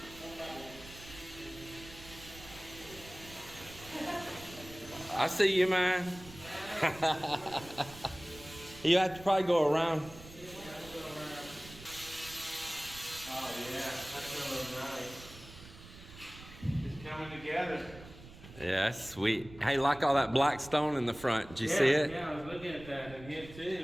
I see you, man. You have to probably go around. Oh yeah, that's really nice. It's coming together. Yeah, that's sweet. Hey, like all that black stone in the front. Did you see it? Yeah, I was looking at that in here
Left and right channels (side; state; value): right; noise; rumble, 17 dB below the sound